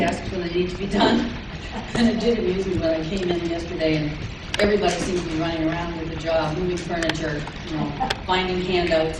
when they need to be done. And it did amuse me when I came in yesterday and everybody seems to be running around with a job, moving furniture, finding handouts,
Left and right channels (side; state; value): both; identical; correlation 1.00